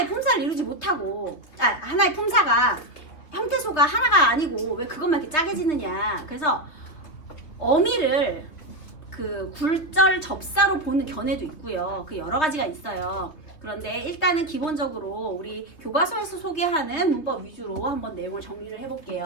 품사를 이루지 못하고 하나의 품사가 형태소가 하나가 아니고 왜 그것만 이렇게 짜게 지느냐. 그래서 어미를 그 굴절 접사로 보는 견해도 있고요. 그 여러 가지가 있어요. 그런데 일단은 기본적으로 우리 교과서에서 소개하는 문법 위주로 한번 내용을 정리를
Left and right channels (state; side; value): late; right; 3.2 ms